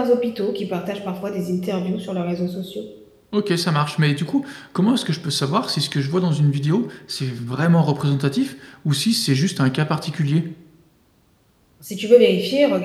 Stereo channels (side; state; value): both; identical; correlation 1.00